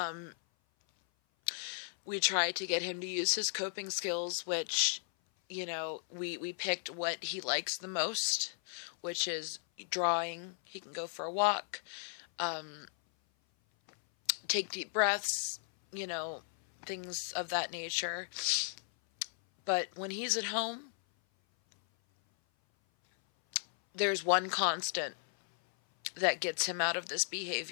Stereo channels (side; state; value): right; silent; 54 dB below the other